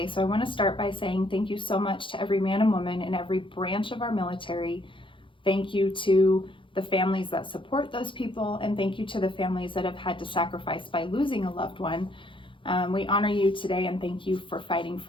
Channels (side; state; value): right; late; 0.25 ms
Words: So I want to start by saying thank you so much to every man and woman in every branch of our military. Thank you to the families that support those people, and thank you to the families that have had to sacrifice by losing a loved one. We honor you today and thank you for fighting